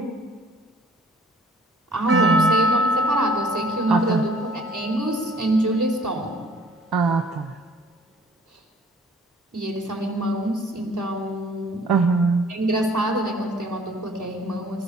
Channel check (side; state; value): both; normal; correlation 0.55